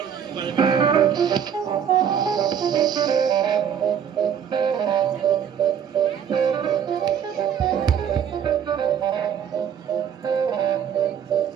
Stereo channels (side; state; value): left; quieter; 8.4 dB